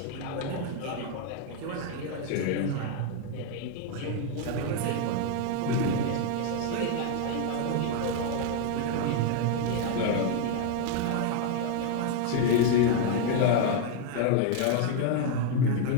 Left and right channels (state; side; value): different; both; correlation 0.00